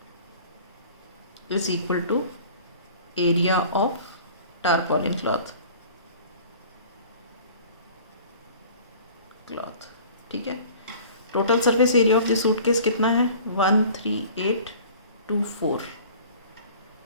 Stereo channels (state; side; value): inverted; both; correlation -0.47